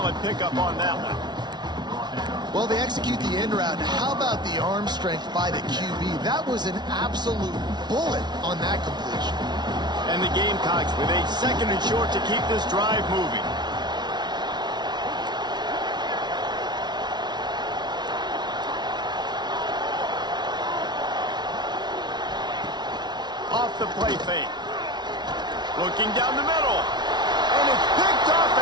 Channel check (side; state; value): left; late; 0.20 ms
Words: pickup on that one. Well, they execute the end route. How about the arm strength by the QB? That was an absolute bullet on that completion. And the Gamecocks with a 2nd and short to keep this drive moving. the play fake. Looking down the middle. And it's picked off